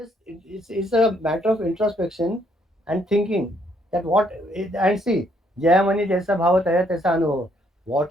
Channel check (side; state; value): both; normal; correlation 0.69